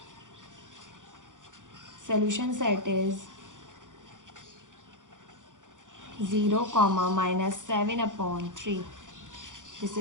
solution set is 0, -7/3। This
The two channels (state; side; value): late; left; 0.87 ms